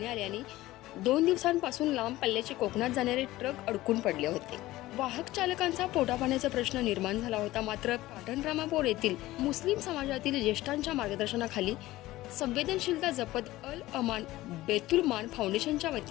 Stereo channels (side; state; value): right; quieter; 17.1 dB